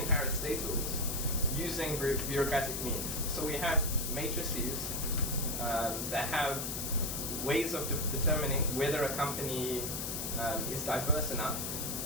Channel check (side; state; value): left; noise; hiss, 3 dB below the sound